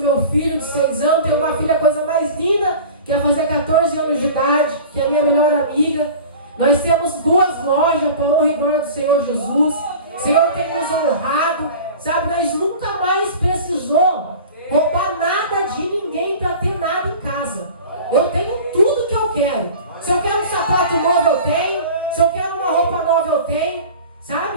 filho de 6 anos, tenho uma filha, a coisa mais linda, que vai fazer 14 anos de idade, que é a minha melhor amiga. Nós temos 2 lojas, para a honra e glória do Senhor Jesus. O Senhor tem nos honrado, sabe? Nós nunca mais precisou roubar nada de ninguém para ter nada em casa. Eu tenho tudo que eu quero. Se eu quero um sapato novo, eu tenho. Se eu quero uma roupa nova, eu tenho.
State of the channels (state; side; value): inverted; both; correlation -0.39